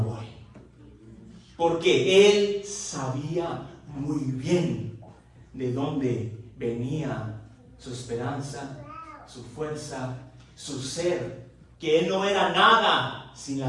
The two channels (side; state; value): both; identical; correlation 1.00